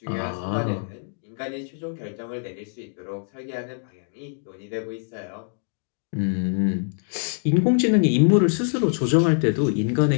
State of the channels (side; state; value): right; silent; digital silence